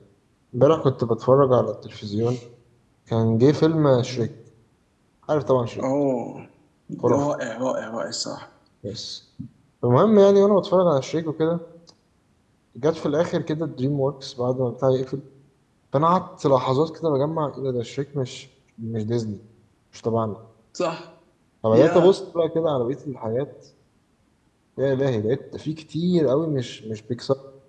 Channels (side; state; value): both; identical; correlation 1.00